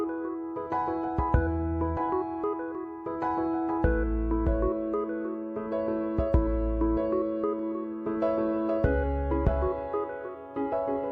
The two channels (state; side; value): identical; both; correlation 1.00